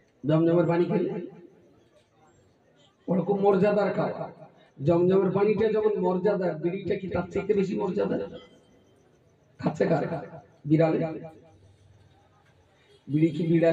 জমজমের পানি খেলে ওরকম মর্যাদার খাবার। জমজমের পানিটা যেমন মর্যাদা, বিড়িটা কি তার থেকে বেশি মর্যাদা? খাচ্ছে কারা? বিড়ালে। বিড়ি কি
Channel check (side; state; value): both; identical; correlation 1.00